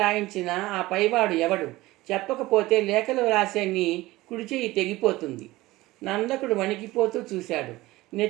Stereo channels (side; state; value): left; quieter; 18.8 dB